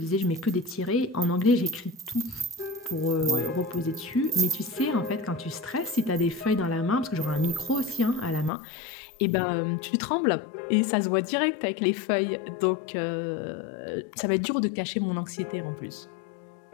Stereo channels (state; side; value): drops out; right; at 8.5 s